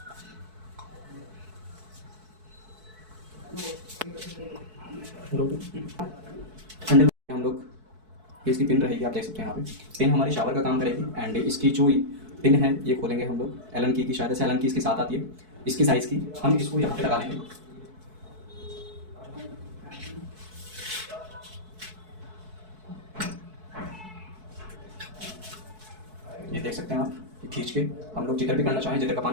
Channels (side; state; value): left; late; 4.6 ms